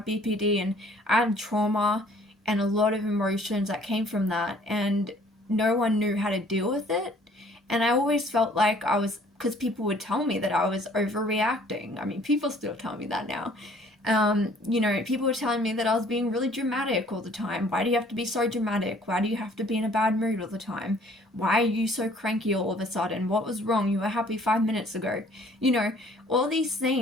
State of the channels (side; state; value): both; normal; correlation 0.57